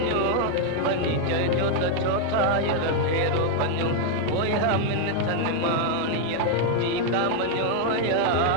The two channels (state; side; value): different; both; correlation 0.00